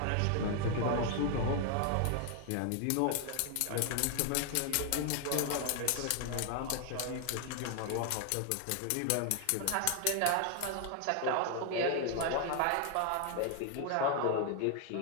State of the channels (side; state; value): both; different; correlation 0.00